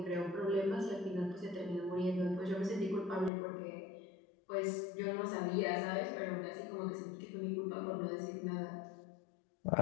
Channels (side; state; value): right; drops out; at 3.3 s